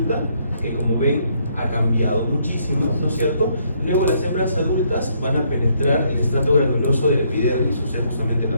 que como ven ha cambiado muchísimo, ¿no es cierto? Luego las hembras adultas van a penetrar el estrato granuloso del epidermis, o sea, justamente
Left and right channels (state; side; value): inverted; both; correlation -0.70